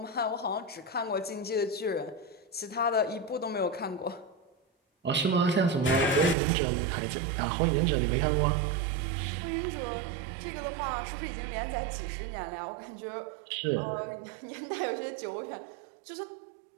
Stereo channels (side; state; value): left; drops out; at 6.4 s